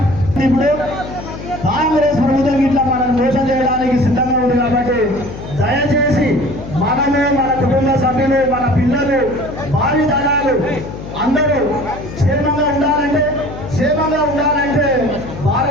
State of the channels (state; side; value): noise; left; hum, 11 dB below the sound